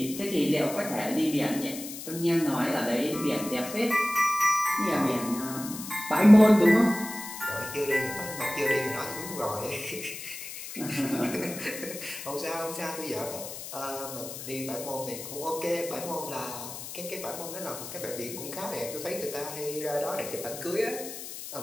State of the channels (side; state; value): left; noise; hiss, 10 dB below the sound